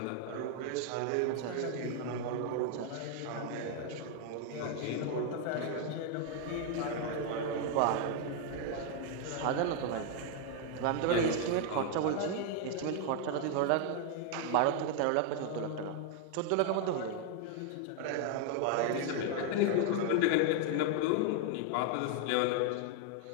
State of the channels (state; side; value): different; both; correlation 0.00